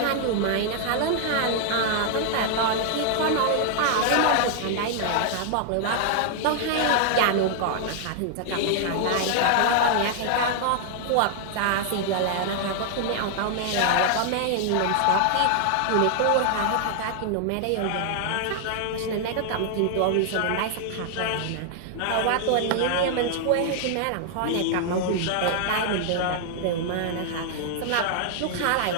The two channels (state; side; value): different; both; correlation 0.00